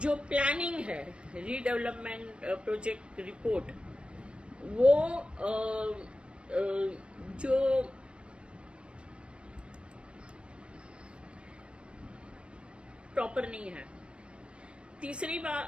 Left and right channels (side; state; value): left; late; 0.058 ms